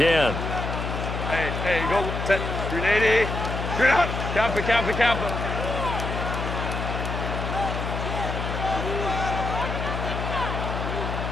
Hey, go set 380. Straight out. Camp it.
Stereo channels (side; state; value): left; noise; hum, 3 dB below the sound